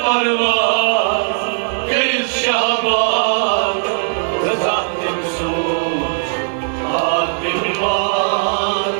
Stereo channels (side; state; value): left; silent; digital silence